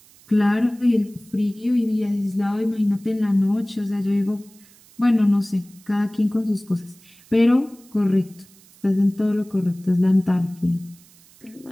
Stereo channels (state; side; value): noise; right; hiss, 27 dB below the sound